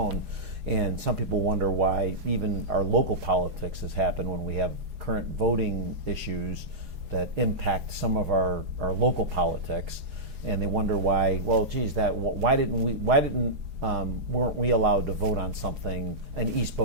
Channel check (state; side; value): late; left; 4.8 ms